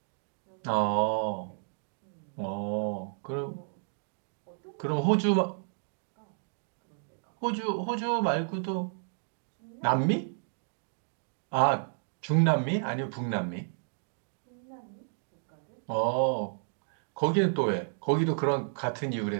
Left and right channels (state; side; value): silent; left; digital silence